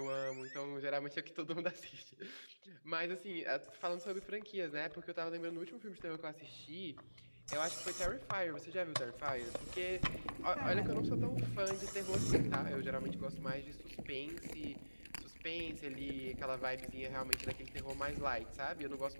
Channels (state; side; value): inverted; both; correlation -1.00